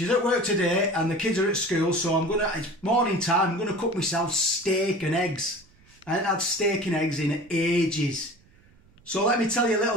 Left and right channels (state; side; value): noise; right; rumble, 29 dB below the sound